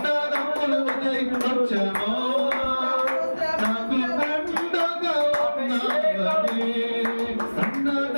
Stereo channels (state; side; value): inverted; both; correlation -1.00